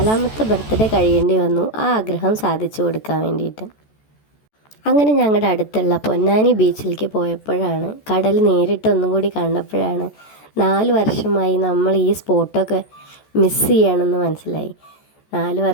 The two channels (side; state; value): right; late; 14 ms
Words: ബർത്ത്ഡേ കഴിയേണ്ടി വന്നു ആ ആഗ്രഹം സാധിച്ചു കൊടുക്കാൻ വേണ്ടിയിട്ട്. അങ്ങനെ ഞങ്ങളുടെ അടുത്തുള്ള പൊന്നാനി ബീച്ചിലേക്ക് പോയപ്പോഴാണ് കടൽ നേരിട്ട് ഒന്നും കൂടി കണ്ടപ്പോഴാണ് 4 വർഷമായി നമ്മൾ ഈ സ്പോട്ടൊക്കെ മിസ് ചെയ്യുകയാണെന്ന് മനസ്സിലായി. 4